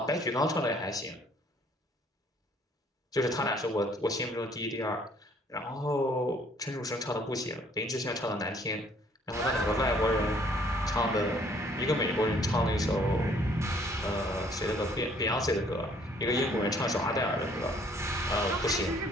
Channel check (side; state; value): both; normal; correlation 0.61